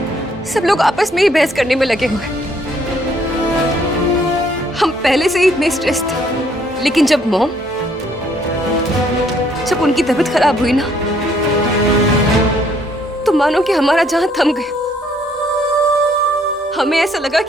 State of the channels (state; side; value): normal; both; correlation 0.66